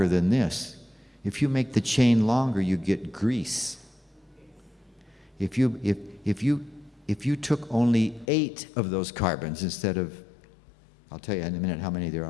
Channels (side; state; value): right; drops out; at 8.2 s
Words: than this. If you make the chain longer, you get grease. If you took only 8 of those carbons instead of, I'll tell you in a minute how many there